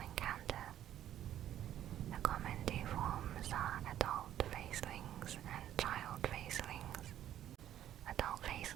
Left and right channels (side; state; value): left; quieter; 11.5 dB